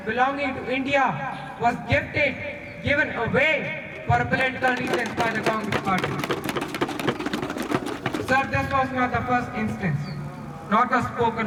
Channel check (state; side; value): identical; both; correlation 1.00